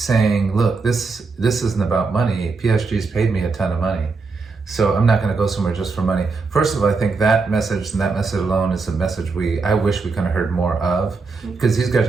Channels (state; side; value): quieter; left; 4.4 dB